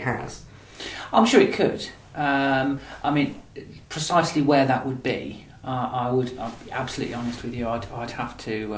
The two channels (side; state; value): both; identical; correlation 1.00